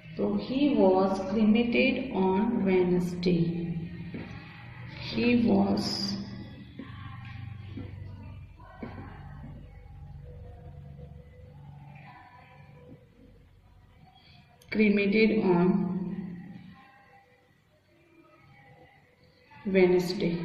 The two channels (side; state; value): both; identical; correlation 1.00